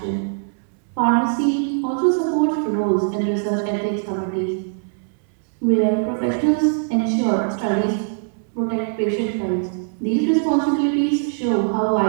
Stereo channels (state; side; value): silent; left; 61 dB below the other